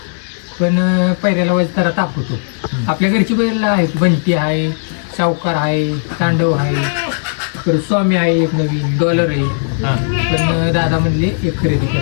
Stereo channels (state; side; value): silent; right; 69 dB below the other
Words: पण पहिल्याला वज जरा ताप होतो. आपल्या घरची बैल आहे, बंटी आहे, सावकार आहे, तांडव आहे, परत स्वामी आहे, एक नवीन डॉलर आहे. हां. पण दादा म्हणले एक खरेदी